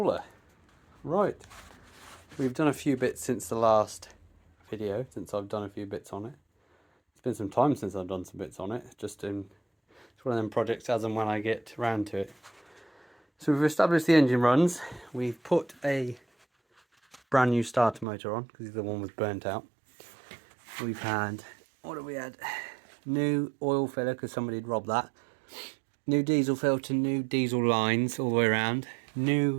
Right, we've done a few bits since the last video, since I've done a few bits on it. It's been some time since I've done some bits on it, it's one of them projects as and when I get around to it. So we've established the engine runs, we've put a brand new starter motor on because the one was burnt out. We've had, what have we had? New oil filler because somebody had robbed that. New diesel filter, new diesel lines all the way around.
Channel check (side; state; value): left; drops out; at 18.1 s